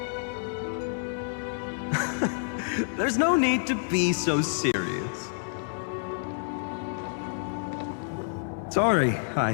There's no need to be so serious. Sorry,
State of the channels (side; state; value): right; silent; 59 dB below the other